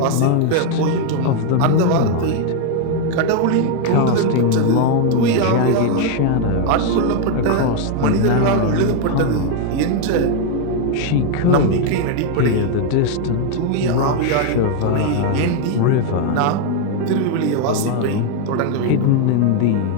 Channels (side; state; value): both; different; correlation 0.00